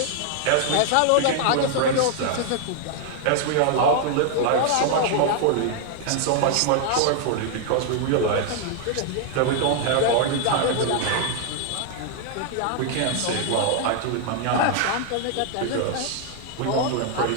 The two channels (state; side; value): different; both; correlation 0.00